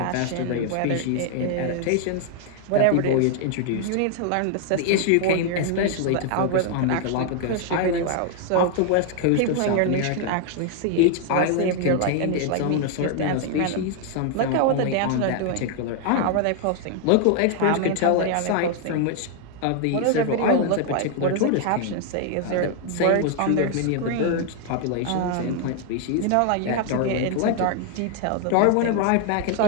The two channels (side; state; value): both; different; correlation 0.00